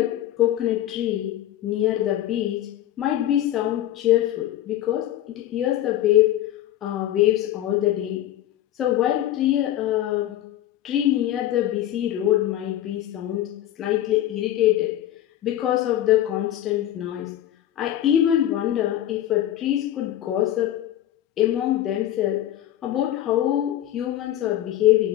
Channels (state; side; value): quieter; right; 12.8 dB